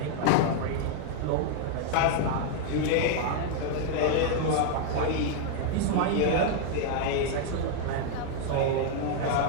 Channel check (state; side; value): different; both; correlation 0.00